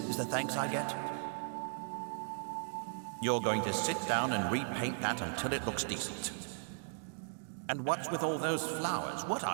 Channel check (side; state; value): left; silent; digital silence